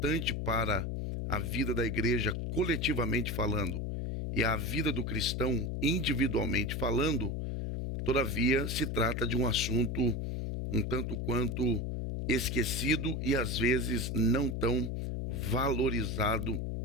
para a vida da igreja coletivamente falando e a vida do cristão individualmente falando, todavia se trata de um assunto um tanto quanto esquecido e às vezes não tão valorizado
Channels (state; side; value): noise; left; hum, 2 dB below the sound